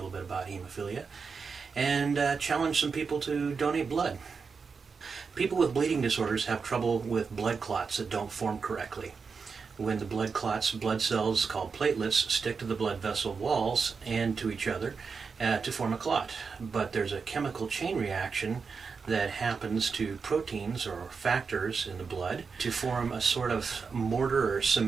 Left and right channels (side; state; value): left; quieter; 5.3 dB